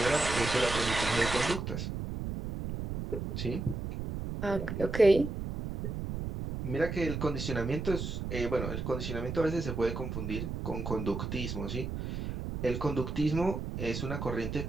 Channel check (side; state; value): right; noise; rumble, 4 dB below the sound